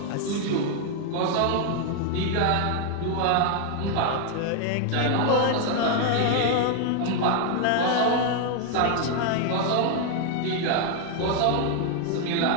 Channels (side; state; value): both; different; correlation 0.00